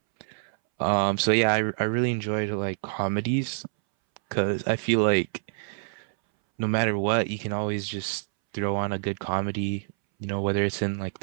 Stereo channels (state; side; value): silent; left; 60 dB below the other